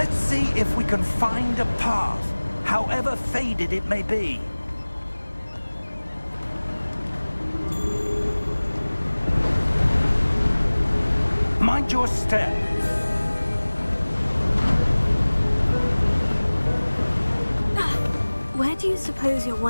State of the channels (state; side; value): inverted; both; correlation -1.00